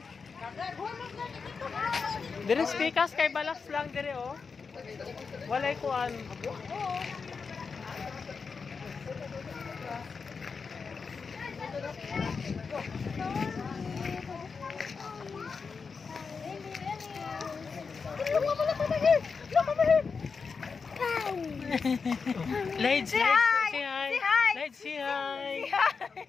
Dire speakers kay balas lang dire oh. Walay kuan. Lights, say hi. Lights, say hi.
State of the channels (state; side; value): quieter; right; 5.2 dB